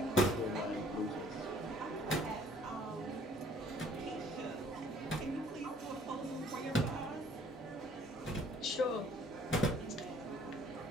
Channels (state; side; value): normal; both; correlation 0.58